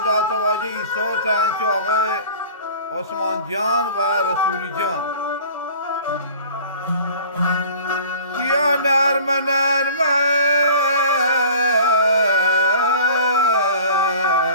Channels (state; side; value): inverted; both; correlation -0.45